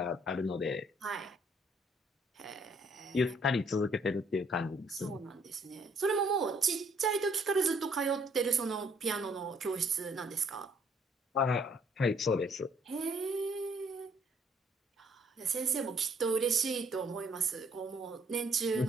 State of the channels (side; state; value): both; normal; correlation 0.64